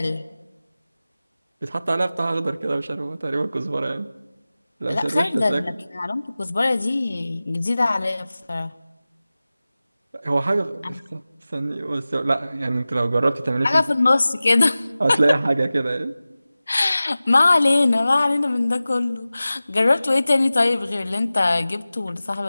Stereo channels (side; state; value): both; inverted; correlation -0.97